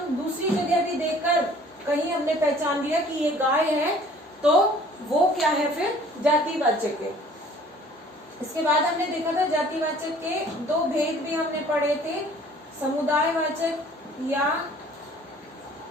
दूसरी जगह भी देखकर कहीं हमने पहचान लिया कि ये गाय है, तो वो क्या है, फिर जातिवाचक है। इसके बाद हमने देखा था जातिवाचक के दो भेद भी हमने पढ़े थे, समुदायवाचक या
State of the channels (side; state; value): both; normal; correlation 0.53